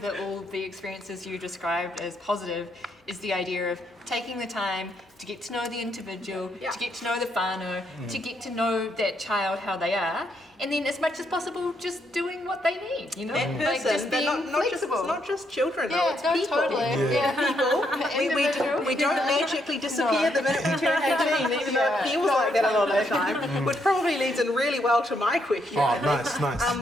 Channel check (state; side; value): normal; both; correlation 0.76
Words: all the experiences you described as positive is the idea of taking the time to get to know the individual, to get to know the whānau, to get to know that child, how they are, and then as much as possible just doing what they need, you know? That person, like just being flexible. It's not just children, though, it's people. People. We don't magically disappear the minute we turn 18, even though it feels like that a lot of the time, which probably leads in really well to my question. Oh, nice.